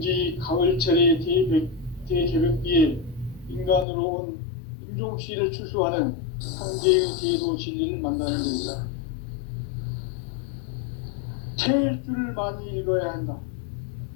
가을철의 대개벽기에 인간으로 온 인종씨를 추수하는 상제의 대도 진리를 만나는 데이다. 태일주를 많이 읽어야 한다.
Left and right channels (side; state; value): right; drops out; at 3.9 s